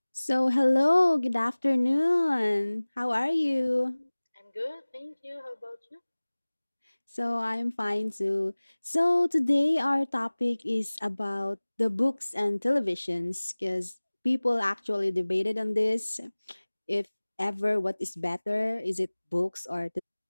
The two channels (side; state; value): both; inverted; correlation -1.00